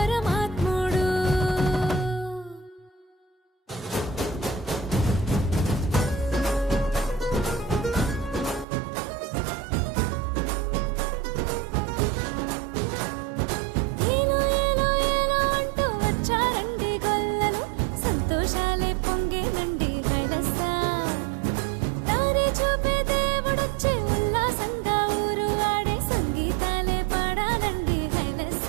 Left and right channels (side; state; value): left; drops out; at 8.7 s